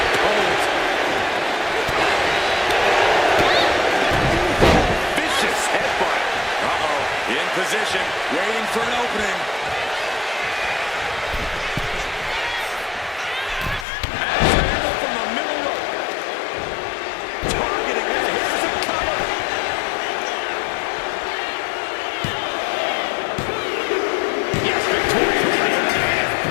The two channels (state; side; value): drops out; right; at 13.9 s